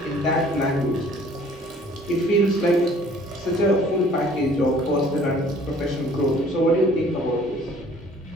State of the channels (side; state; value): both; normal; correlation 0.55